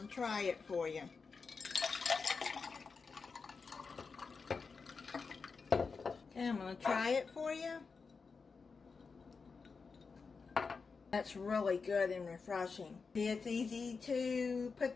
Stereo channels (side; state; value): right; quieter; 4.9 dB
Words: to try it for you. Okay, I'm going to try it for you. That's really good and refreshing. It's easy to